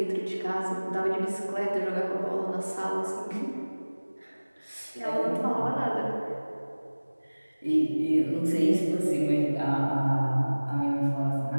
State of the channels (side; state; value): both; inverted; correlation -1.00